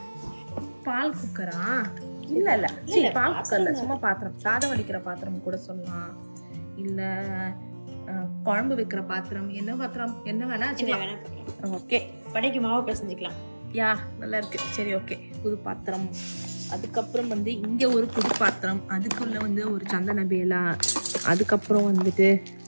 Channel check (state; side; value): inverted; both; correlation -1.00